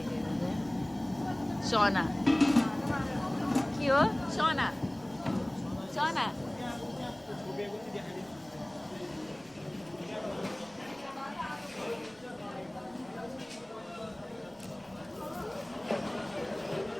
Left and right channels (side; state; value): right; noise; rumble, 28 dB below the sound